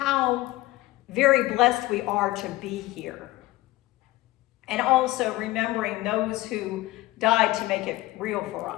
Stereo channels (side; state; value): right; quieter; 18.2 dB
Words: very blessed we are to be here. And also remembering those who died to make it real for